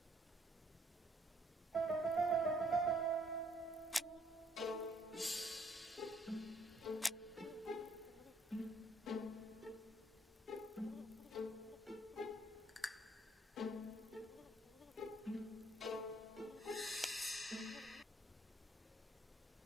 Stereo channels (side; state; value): both; normal; correlation 0.65